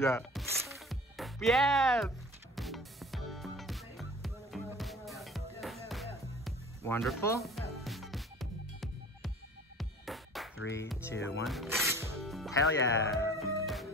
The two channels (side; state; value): both; normal; correlation 0.44